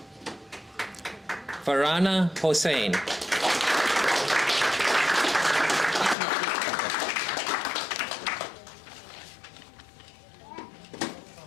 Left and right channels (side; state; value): right; drops out; at 6.2 s